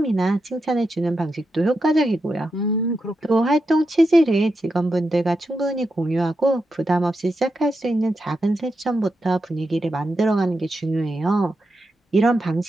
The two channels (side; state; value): both; normal; correlation 0.87